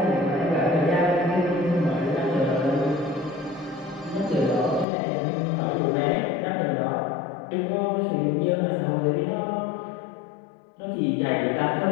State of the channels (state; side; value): drops out; right; at 4.9 s